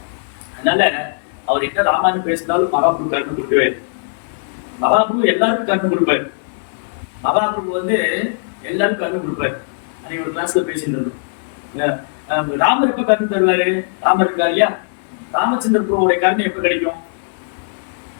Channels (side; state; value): right; silent; digital silence